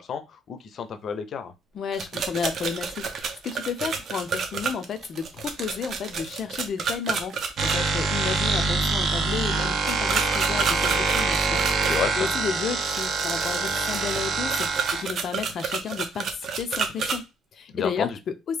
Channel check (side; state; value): both; normal; correlation 0.67